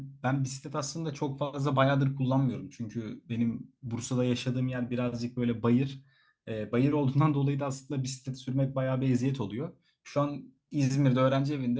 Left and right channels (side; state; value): both; identical; correlation 1.00